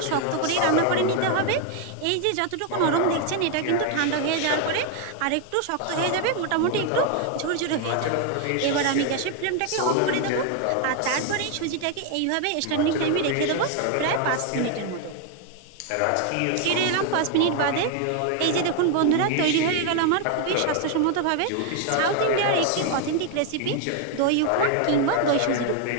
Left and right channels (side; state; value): both; different; correlation 0.00